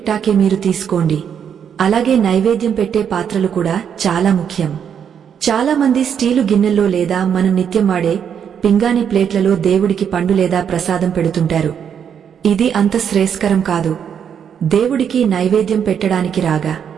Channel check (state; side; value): quieter; left; 8.0 dB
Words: మీరు తీసుకోండి. అలాగే నైవేద్యం పెట్టే పాత్రలు కూడా చాలా ముఖ్యం. చాలామంది స్టీలు గిన్నెల్లో లేదా మనం నిత్యం వాడే పింగాణి ప్లేట్లలో దేవుడికి పండు లేదా ప్రసాదం పెడుతుంటారు. ఇది అంత శ్రేయస్కరం కాదు. దేవుడికి నైవేద్యం పెట్టడానికి రాగా